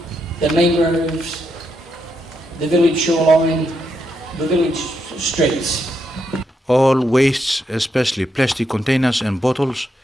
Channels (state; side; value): normal; both; correlation 0.80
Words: the mangroves, the village shoreline, the village streets. All wastes, especially plastic containers and bottles,